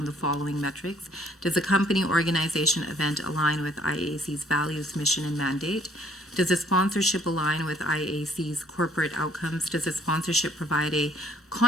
the following metrics. Does the company, organization, event align with IAC's values, mission, and mandate? Does the sponsorship align with IAC's corporate outcomes? Does the sponsorship provide a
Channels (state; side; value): normal; both; correlation 0.62